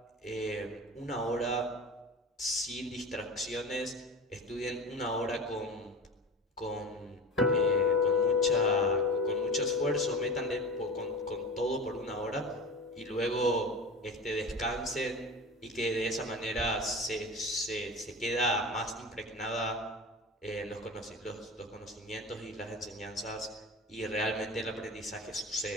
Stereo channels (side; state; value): both; normal; correlation 0.32